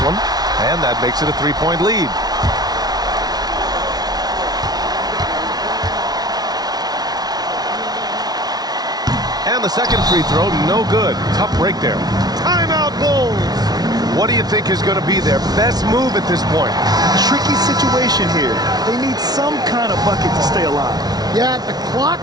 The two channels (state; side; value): late; left; 0.19 ms